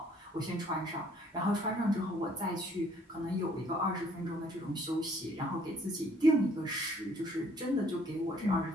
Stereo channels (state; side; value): normal; both; correlation 0.61